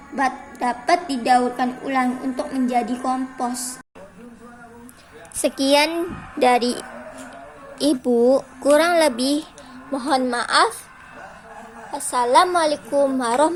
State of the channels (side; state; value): both; identical; correlation 1.00